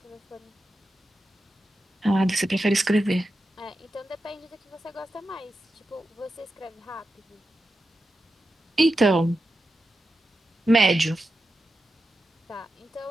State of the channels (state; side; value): normal; both; correlation 0.90